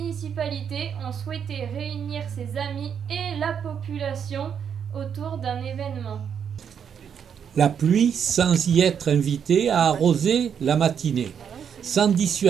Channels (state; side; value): quieter; left; 7.8 dB